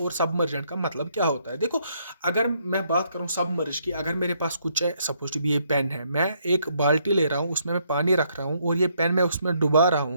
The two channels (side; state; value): both; inverted; correlation -0.71